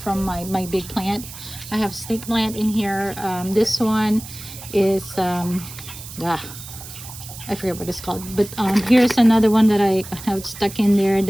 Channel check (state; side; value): noise; right; hiss, 14 dB below the sound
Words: from my big plant. I have snake plant in here. This one is I forget what it's called, but here's another one that I have stuck in there.